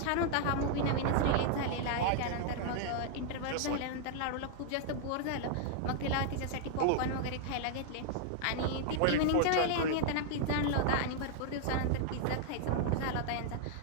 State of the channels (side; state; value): both; different; correlation -0.01